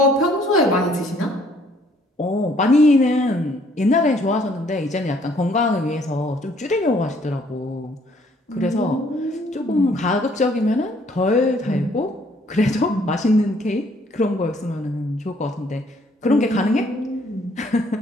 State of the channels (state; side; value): normal; both; correlation 0.63